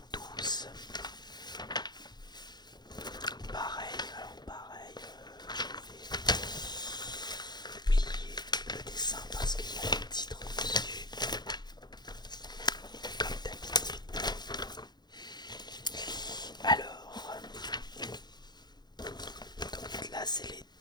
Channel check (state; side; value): late; right; 0.21 ms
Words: 12. Pareil, je vais plier le dessin parce qu'il y a le titre dessus, comme d'habitude. Alors, donc là c'est les